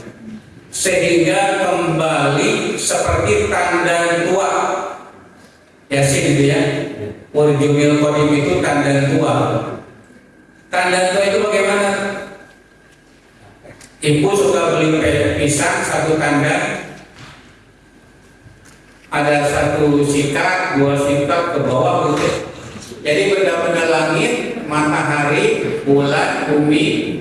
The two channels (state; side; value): identical; both; correlation 1.00